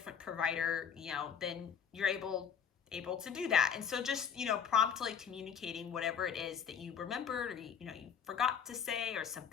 provider, then you're able to do that. And so just, promptly communicating whatever it is that you remembered, or, you forgot to say, or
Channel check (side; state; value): right; quieter; 7.4 dB